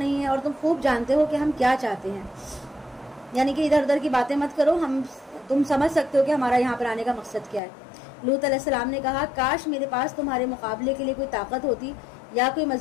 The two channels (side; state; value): right; drops out; at 7.6 s